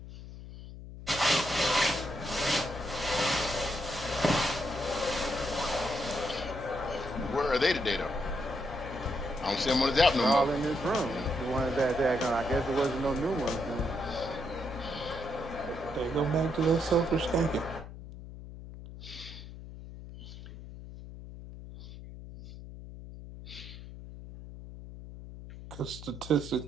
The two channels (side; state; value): left; noise; hum, 13 dB below the sound